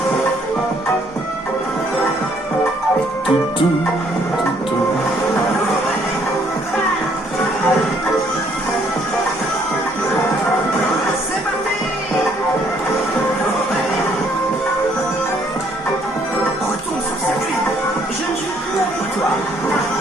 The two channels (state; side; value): normal; both; correlation 0.65